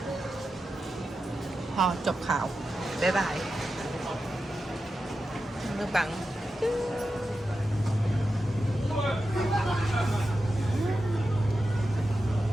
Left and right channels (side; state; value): both; normal; correlation 0.91